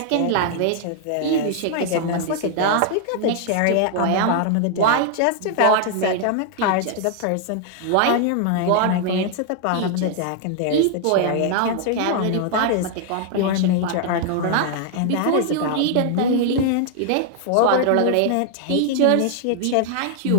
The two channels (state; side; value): different; both; correlation 0.00